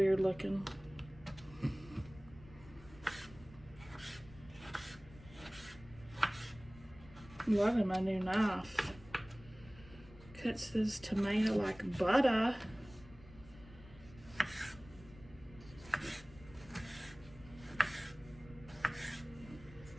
looking. Loving my new knife. Cuts this tomato like butter.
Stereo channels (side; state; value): left; noise; rumble, 20 dB below the sound